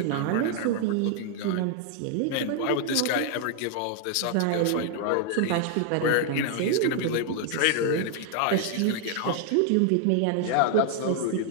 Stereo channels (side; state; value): both; different; correlation 0.00